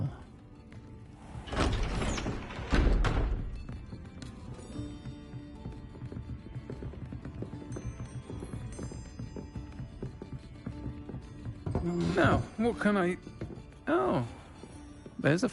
Now, what can I... Oh, there's a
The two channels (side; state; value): both; identical; correlation 1.00